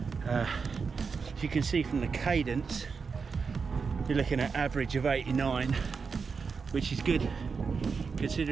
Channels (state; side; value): quieter; left; 5.3 dB